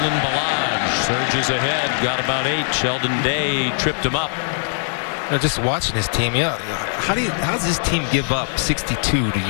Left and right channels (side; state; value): right; silent; 65 dB below the other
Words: Balaj surges ahead, got about 8. Sheldon Day tripped him up. You know, just watching this team, how does this team give up 62 to